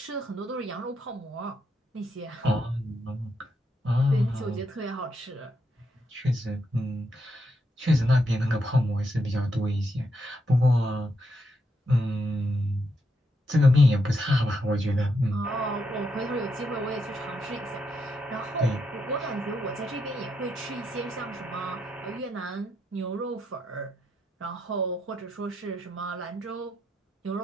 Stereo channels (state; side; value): normal; both; correlation 0.80